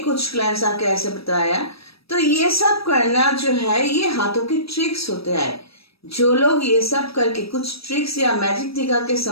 क्लाइंट्स आके ऐसे बताया। तो ये सब करना जो है ये हाथों के ट्रिक्स होते हैं। जो लोग ये सब करके कुछ ट्रिक्स या मैजिक दिखा के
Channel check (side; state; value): right; late; 0.77 ms